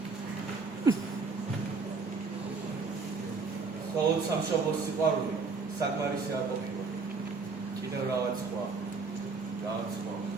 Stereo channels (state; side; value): quieter; left; 4.4 dB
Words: მხოლოდ სამშობლოს სიყვარული საკმარისი არ ყოფილა. კიდევ რაღაც სხვა.